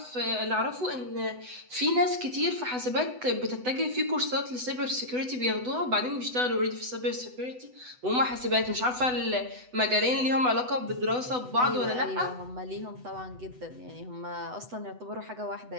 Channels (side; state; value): left; late; 8.0 ms